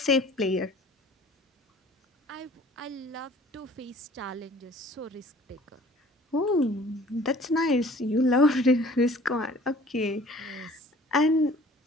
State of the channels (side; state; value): both; normal; correlation 0.51